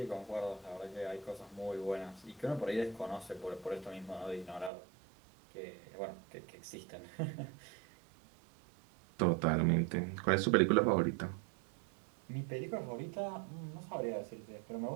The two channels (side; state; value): left; drops out; at 4.7 s